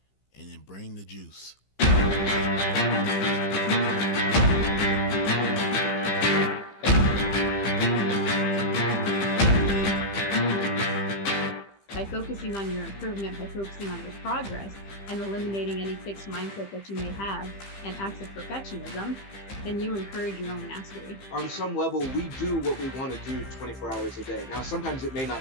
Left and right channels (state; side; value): late; right; 15 ms